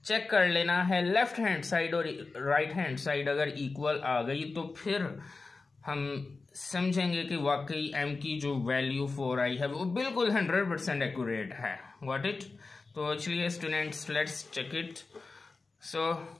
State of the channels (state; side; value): quieter; right; 3.9 dB